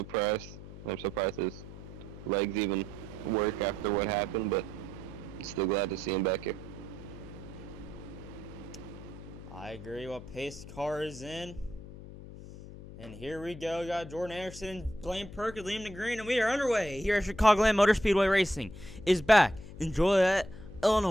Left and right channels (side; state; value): left; noise; hum, 14 dB below the sound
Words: I'm surprised his legs even work after what happened, but still glad to see him back here. I agree. Well, pace car is in. And here we go. We got Jordan Anderson, Blaine Perkins, Liam Green, and we are underway here at Chicagoland Motor Speedway Racing is back in Joliet,